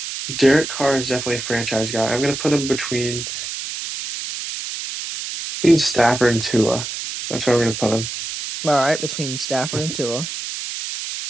Derek Carr is definitely a franchise guy. I'm gonna put him between Stafford and Tua. That's where I'm gonna put him. All right. Between Stafford and Tua.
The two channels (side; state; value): right; noise; hiss, 6 dB below the sound